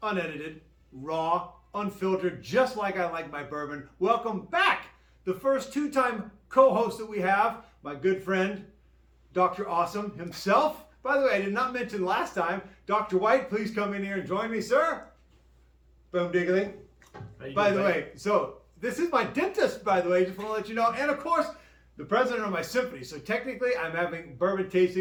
unedited, raw, unfiltered, just like I like my bourbon. Welcome back. The first two-time co-host that we have, my good friend, Dr. Awesome himself. By the way, I did not mention last time, Dr. White, please come in here and join me, sir. Boom diggly. By the way, so this is my dentist, by the way, just want to let you know. And of course, the president of my symphony. So technically, I'm having bourbon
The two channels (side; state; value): both; identical; correlation 1.00